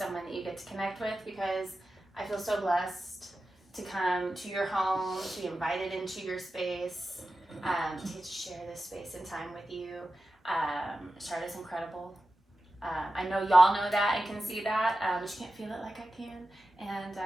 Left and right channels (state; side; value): normal; both; correlation 0.93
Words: that you get to connect with, because I feel so blessed to come to your home, to be invited into your space, to get to share this space and time with you. Charlotte's incredible. I know y'all know that and can see that, but you can't feel it like I can. And